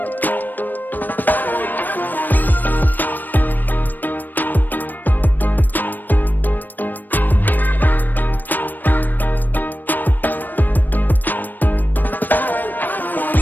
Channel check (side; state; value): right; late; 0.090 ms